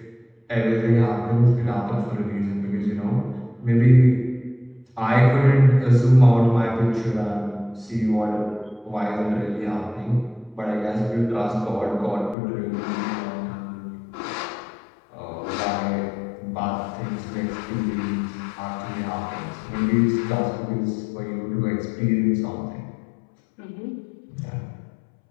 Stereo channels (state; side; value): drops out; right; at 12.4 s